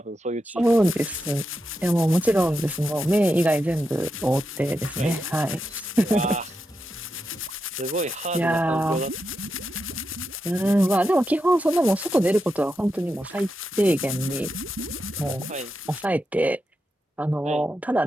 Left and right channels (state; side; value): normal; both; correlation 0.87